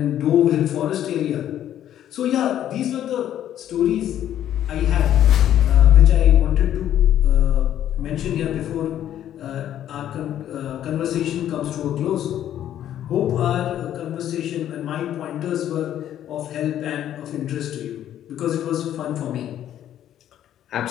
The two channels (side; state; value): right; quieter; 11.2 dB